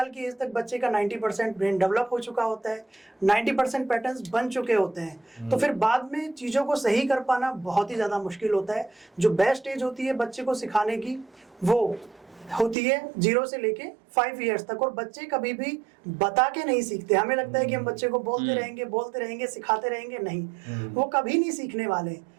की एज तक बच्चे का 90% ब्रेन डेवलप हो चुका होता है, 90% पैटर्न्स बन चुके होते हैं। तो फिर बाद में चीज़ों को सही कर पाना बहुत ही ज़्यादा मुश्किल होता है। जो बेस्ट एज होती है बच्चे को सिखाने की, वो होती है 0 से लेके 5 ईयर्स तक। और बच्चे कभी भी बता के नहीं सीखते। हमें लगता है कि हम बच्चे को बोलते रहेंगे, सिखाते रहेंगे, नहीं, वो कभी नहीं सीखने वाले।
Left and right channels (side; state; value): left; drops out; at 12.8 s